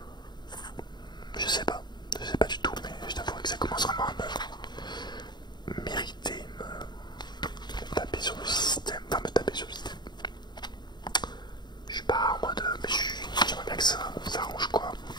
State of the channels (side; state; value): right; late; 0.21 ms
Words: Je sais pas du tout, mais je t'avoue que ça commence vraiment à me m'irriter,